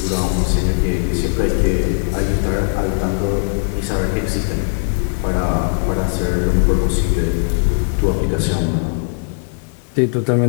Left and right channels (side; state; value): right; silent; digital silence